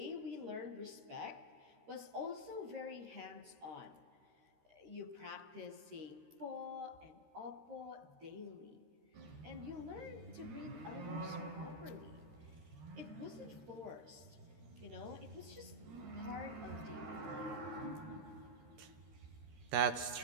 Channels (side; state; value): left; late; 13 ms